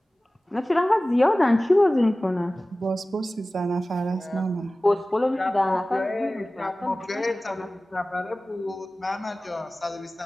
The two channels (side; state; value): both; normal; correlation 0.97